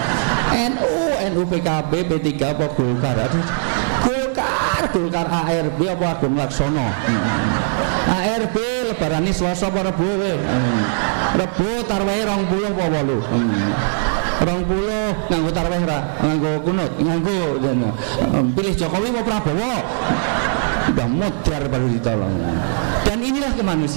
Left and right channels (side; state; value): left; silent; 66 dB below the other